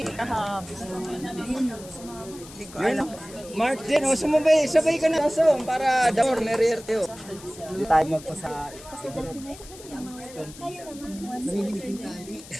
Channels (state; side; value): noise; left; hiss, 18 dB below the sound